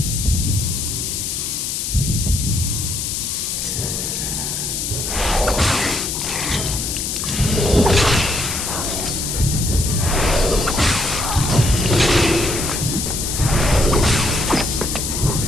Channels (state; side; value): noise; left; hiss, 2 dB below the sound